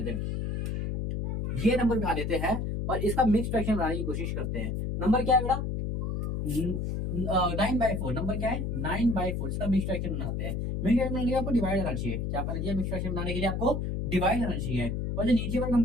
हैं, ये नंबर उठा लेते हैं और इसका मिक्स फ्रैक्शन बनाने की कोशिश करते हैं। नंबर क्या है बेटा, 9/4। नंबर क्या है 9/4, इसका मिक्स फ्रैक्शन बनाते हैं। मिक्स फ्रैक्शन बनाने के लिए आपको डिवाइड आना चाहिए, क्या करना चाहिए, मिक्स फ्रैक्शन बनाने के लिए आपको डिवाइड आना चाहिए। और जो नीचे वाला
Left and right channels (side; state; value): left; noise; hum, 2 dB below the sound